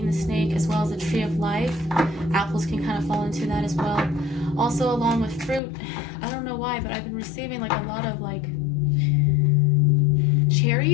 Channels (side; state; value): right; drops out; at 5.6 s